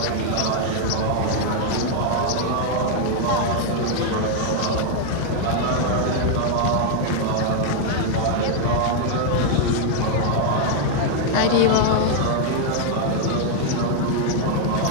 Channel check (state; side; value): different; both; correlation 0.00